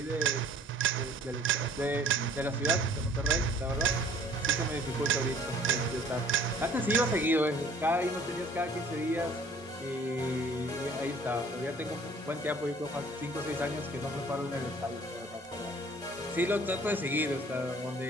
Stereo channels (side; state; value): both; normal; correlation 0.54